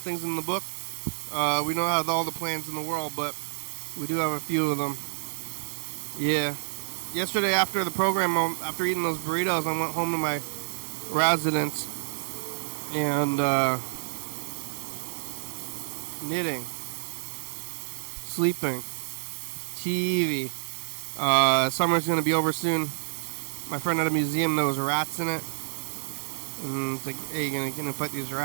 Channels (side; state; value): left; silent; digital silence